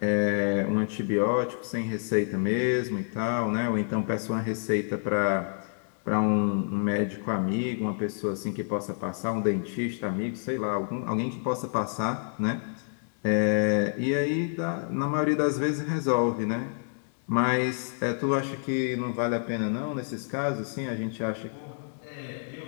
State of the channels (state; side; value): silent; right; digital silence